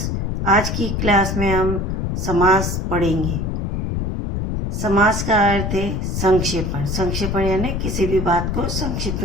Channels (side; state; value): left; noise; rumble, 1 dB below the sound